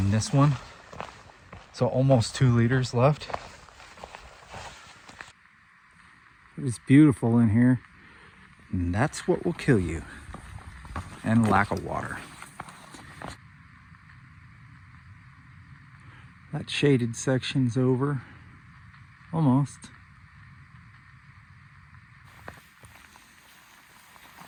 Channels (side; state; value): both; identical; correlation 1.00